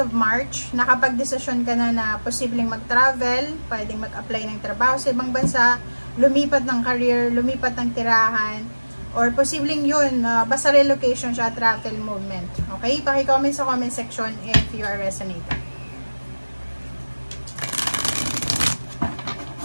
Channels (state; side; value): inverted; both; correlation -1.00